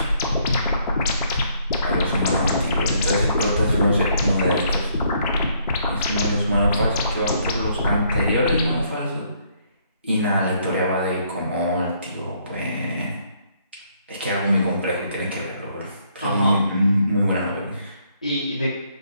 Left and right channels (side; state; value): both; inverted; correlation -0.69